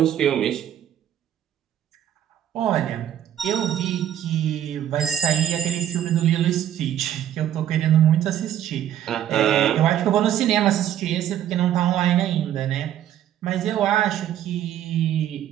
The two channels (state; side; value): quieter; left; 10.8 dB